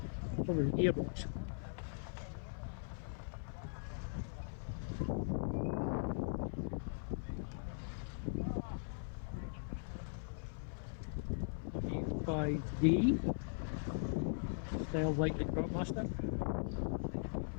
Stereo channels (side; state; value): right; silent; 51 dB below the other